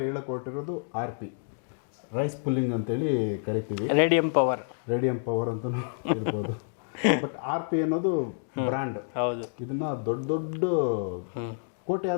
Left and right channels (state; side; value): silent; right; digital silence